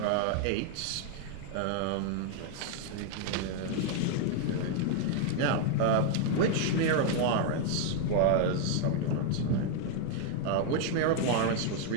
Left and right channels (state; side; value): different; both; correlation 0.00